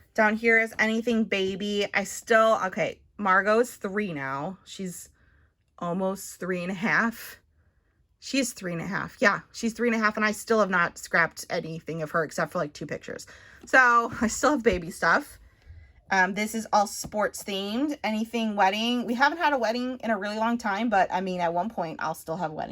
Down here is anything baby. Okay, Margot's 3 now. She's almost 3.5. She's 3.5. Yeah, she's 3.5, and I still have not scrapped anything of her except for like 2 pictures. So I still have baby stuff. This is all sports themed. Anything wedding. We haven't had a wedding in a really long time, but I mean, at one point I'll still have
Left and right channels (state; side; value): identical; both; correlation 1.00